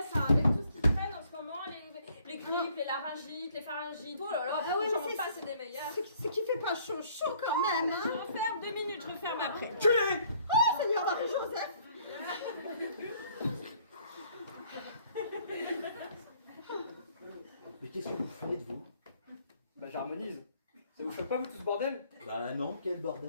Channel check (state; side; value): inverted; both; correlation -0.62